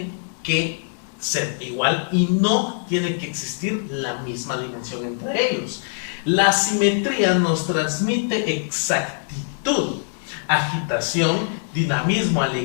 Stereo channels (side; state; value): right; silent; digital silence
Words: que ser igual y no tiene que existir la misma dimensión entre ellos. La simetría nos transmite exactitud, agitación, dinamismo,